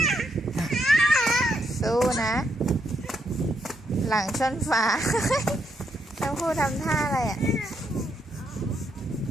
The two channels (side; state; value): both; normal; correlation 0.78